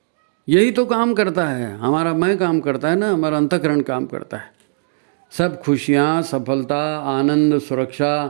यही तो काम करता है, हमारा मैं काम करता है ना, हमारा अंतःकरण काम करता है। सब खुशियाँ, सफलता, आनंद,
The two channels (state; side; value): silent; left; digital silence